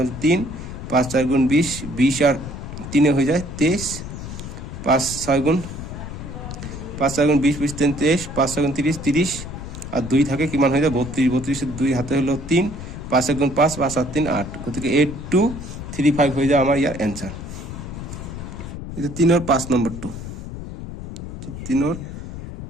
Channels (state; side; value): noise; left; rumble, 9 dB below the sound